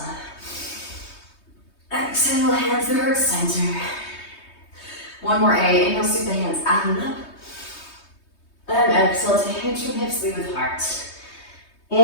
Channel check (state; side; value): late; right; 3.2 ms